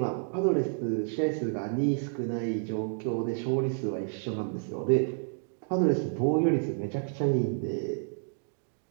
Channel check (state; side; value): silent; left; digital silence